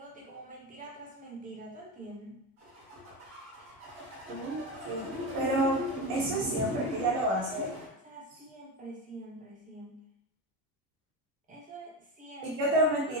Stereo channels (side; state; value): both; normal; correlation 0.18